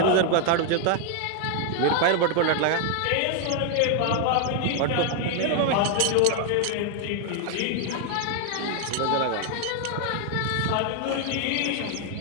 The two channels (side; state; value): both; different; correlation 0.00